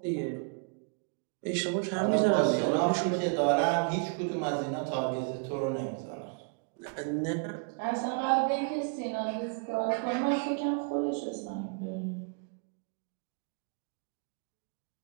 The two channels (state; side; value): quieter; left; 37.8 dB